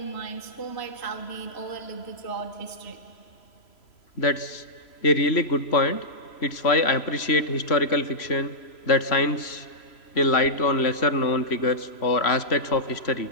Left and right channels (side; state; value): right; late; 3.0 ms